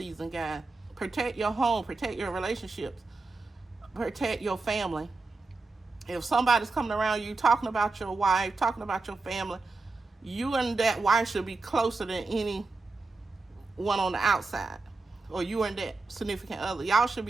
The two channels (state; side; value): quieter; left; 3.7 dB